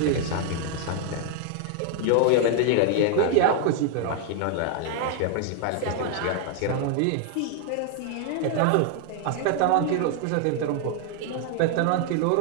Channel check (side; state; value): both; different; correlation 0.00